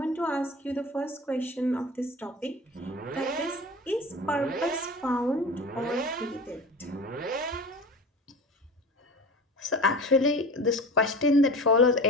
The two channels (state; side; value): normal; both; correlation 0.34